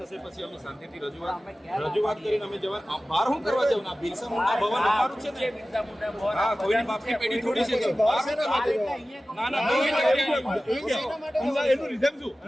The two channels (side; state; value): both; normal; correlation 0.96